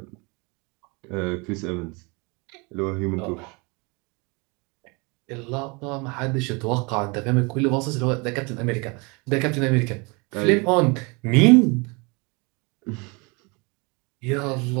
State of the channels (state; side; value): quieter; left; 29.1 dB